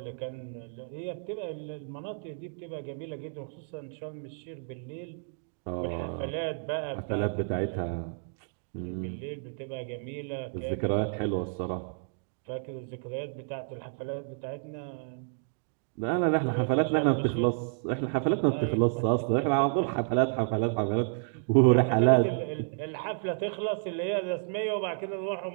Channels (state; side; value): silent; left; digital silence